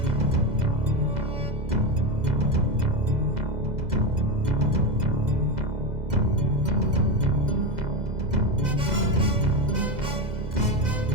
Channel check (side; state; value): left; late; 2.0 ms